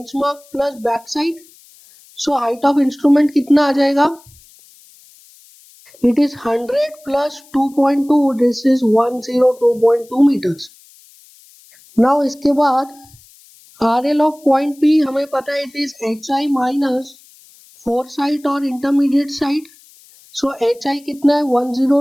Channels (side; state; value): left; noise; hiss, 26 dB below the sound